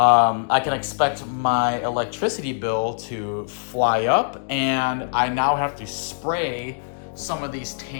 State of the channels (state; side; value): silent; right; digital silence